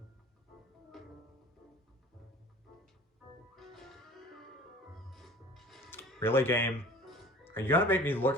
Really, game? Are you gonna make me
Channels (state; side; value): normal; both; correlation 0.46